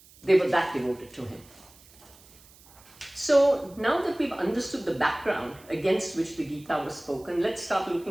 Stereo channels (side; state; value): right; noise; hiss, 25 dB below the sound